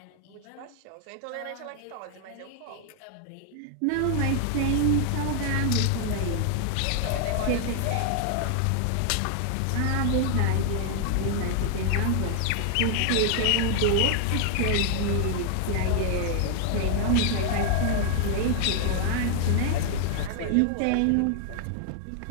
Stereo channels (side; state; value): both; different; correlation 0.00